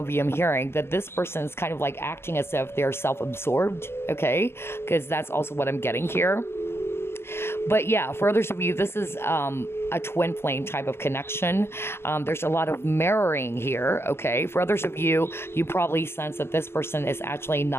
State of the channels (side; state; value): right; late; 0.12 ms